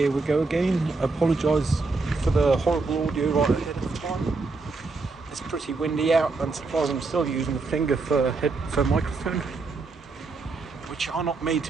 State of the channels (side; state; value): left; quieter; 3.9 dB